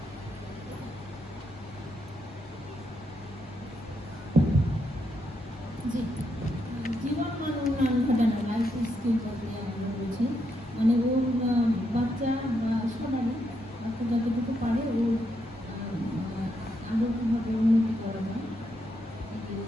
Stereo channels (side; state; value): left; noise; rumble, 23 dB below the sound